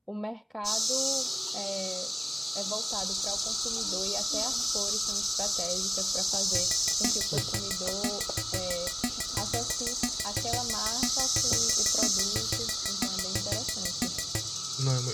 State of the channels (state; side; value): identical; both; correlation 1.00